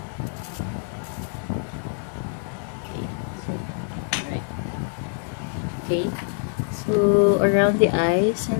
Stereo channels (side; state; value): right; silent; 55 dB below the other